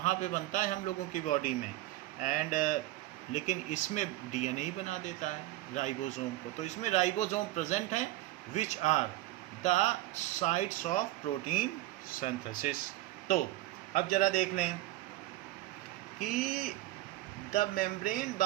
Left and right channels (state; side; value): quieter; left; 16.3 dB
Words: पे बनता है हम लोगों की बॉडी में। एंड लेकिन इसमें डीएनए ही बना देता है राइबोसोम को। तो इसमें राइबोसोम प्रेजेंट हैं which are the sites of protein synthesis. तो अब जरा देख लें कि the membrane